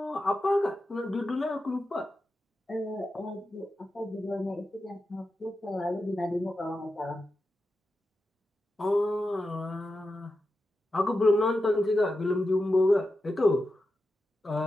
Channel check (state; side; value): normal; both; correlation 0.90